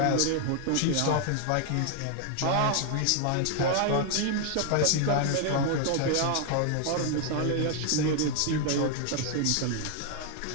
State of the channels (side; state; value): both; different; correlation 0.00